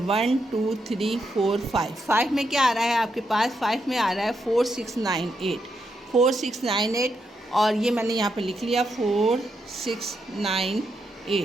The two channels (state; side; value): normal; both; correlation 0.82